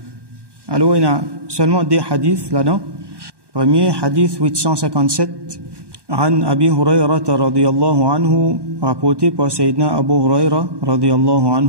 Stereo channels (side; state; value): left; late; 1.2 ms